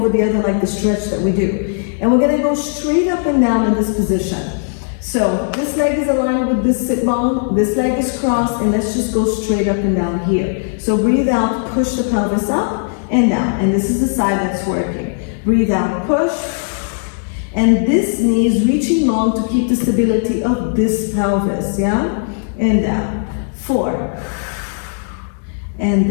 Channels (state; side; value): silent; right; digital silence